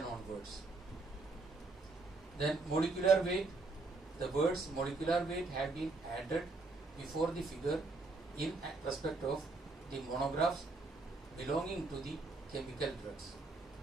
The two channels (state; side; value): quieter; left; 3.5 dB